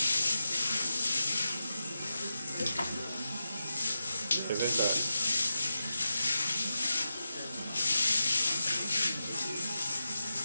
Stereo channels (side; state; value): both; inverted; correlation -0.90